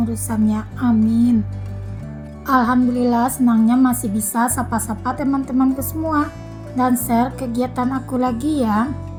urusannya. Amin. Alhamdulillah, senangnya masih bisa sapa-sapa teman-temanku semua dan share kegiatan aku lagi ya.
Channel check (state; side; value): identical; both; correlation 1.00